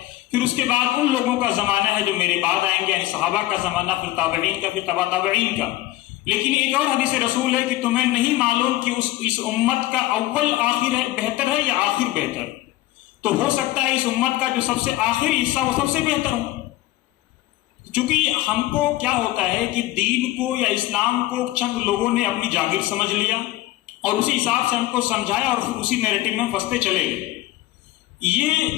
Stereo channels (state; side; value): quieter; right; 16.5 dB